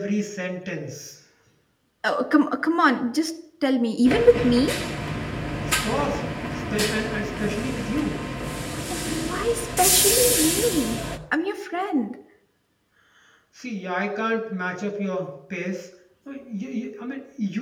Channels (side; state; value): both; identical; correlation 1.00